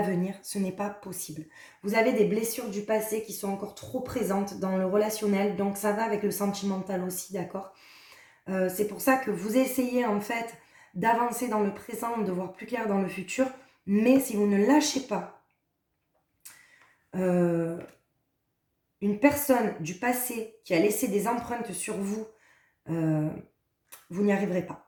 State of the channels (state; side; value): identical; both; correlation 1.00